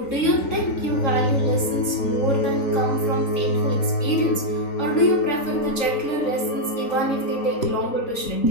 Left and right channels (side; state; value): right; late; 3.9 ms